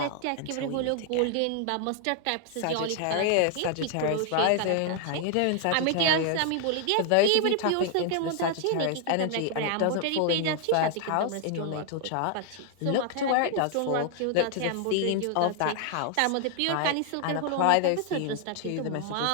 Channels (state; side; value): different; both; correlation 0.00